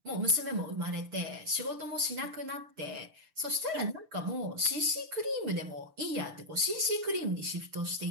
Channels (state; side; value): late; left; 6.7 ms